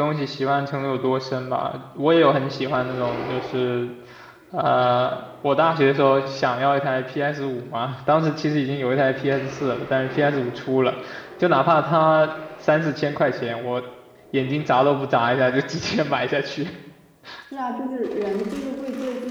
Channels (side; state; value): both; identical; correlation 1.00